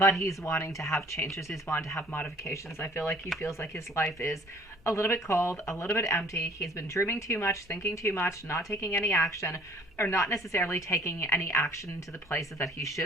he's wanting to have changes. He's wanting to have modifications. I feel like he feels like his life is a little bit cold, a little bit empty. He's been dreaming too much, thinking too much, not taking any action, or not necessarily taking any action to the places that he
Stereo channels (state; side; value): normal; both; correlation 0.54